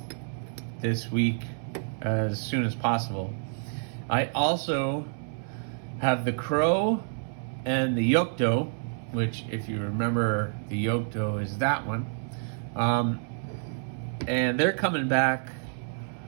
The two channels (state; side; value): silent; left; 59 dB below the other